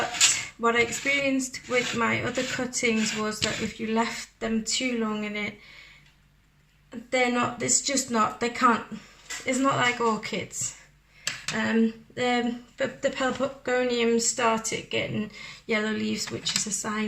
what I experienced with my other cuttings was that if you left them too long in it, they can't, it's not like orchids. The pelargoniums started getting yellow leaves, which is a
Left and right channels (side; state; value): both; identical; correlation 1.00